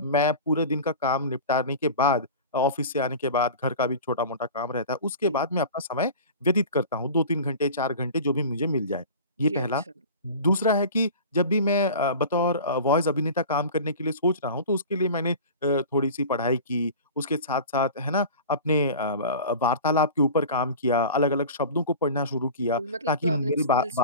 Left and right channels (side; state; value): both; inverted; correlation -0.35